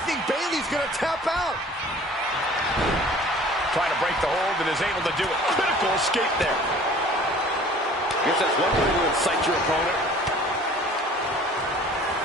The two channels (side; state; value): both; normal; correlation 0.49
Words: think Bayley's going to tap out. Trying to break the hold and is able to do it. Critical escape there. Guess that's one way to incite your opponent.